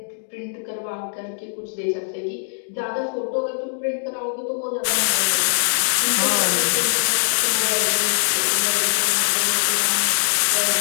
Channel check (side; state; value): right; silent; digital silence